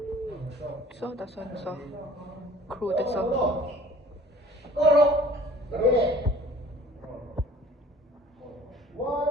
So, that's one. So, crew that's so.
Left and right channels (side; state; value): both; normal; correlation 0.50